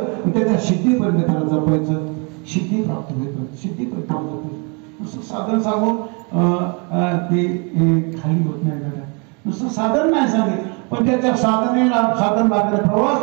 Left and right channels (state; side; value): quieter; left; 32.7 dB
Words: त्याच्या सिद्धीपर्यंत त्याला जपायचं, सिद्धी प्राप्त होईपर्यंत सिद्धीपर्यंत जपायचं. नुसतं साधन सांगून ते खाली होत नाही दादा. नुसतं साधन नाही सांगितलं, पण त्याच्या साधनेला साधन लागले.